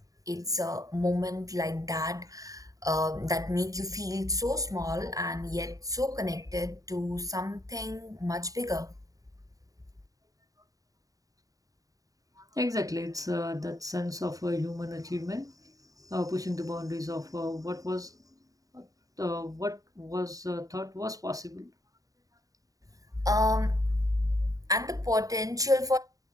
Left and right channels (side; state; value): left; late; 0.17 ms